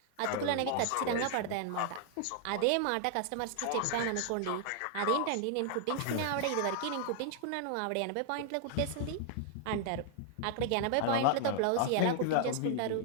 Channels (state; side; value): different; both; correlation -0.01